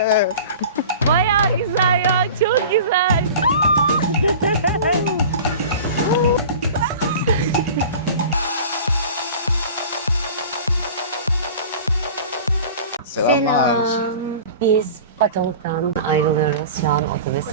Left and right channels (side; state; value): both; inverted; correlation -0.39